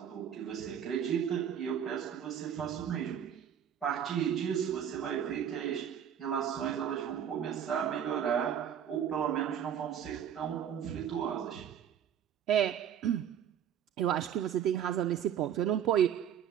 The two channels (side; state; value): left; quieter; 9.2 dB